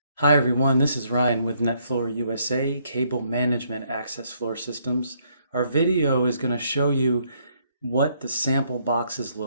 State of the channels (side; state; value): both; inverted; correlation -0.71